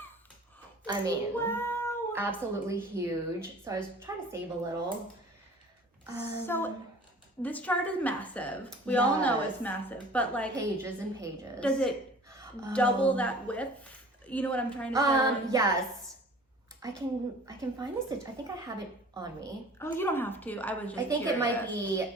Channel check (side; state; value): both; normal; correlation 0.46